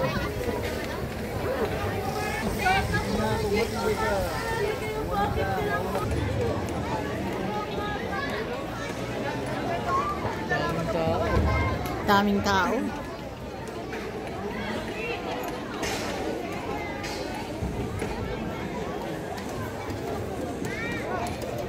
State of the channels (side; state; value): both; identical; correlation 1.00